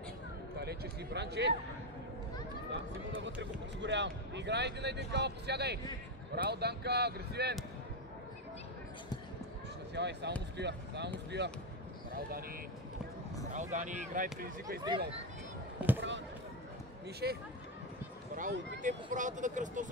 Далече си, Бранче. Да, Симо навътре го подсигурявам. Играй 1 на 1, кава, посягай. Браво, Данка, агресивен. Насявай, само му стоя. Браво, Дани. Браво, Дани, играй, предизвикай с дрибъл. Мише. Браво, опитай по правата да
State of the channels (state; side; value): normal; both; correlation 0.09